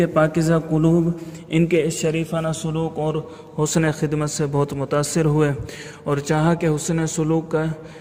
پاکیزہ قلوب ان کے اس شریفانہ سلوک اور حسن خدمت سے بہت متاثر ہوئے اور چاہا کہ حسن سلوک کا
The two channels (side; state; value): both; identical; correlation 1.00